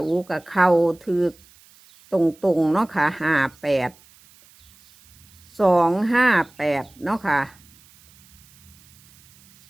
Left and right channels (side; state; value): right; noise; hiss, 28 dB below the sound